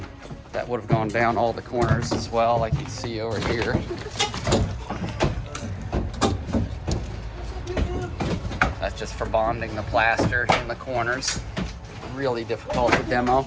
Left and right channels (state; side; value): identical; both; correlation 1.00